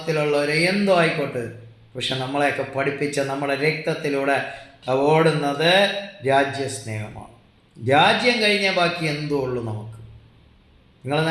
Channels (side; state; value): both; identical; correlation 1.00